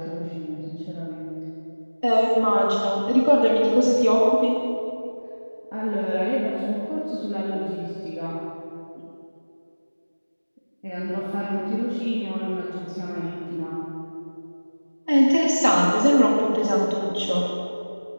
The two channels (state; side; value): inverted; both; correlation -1.00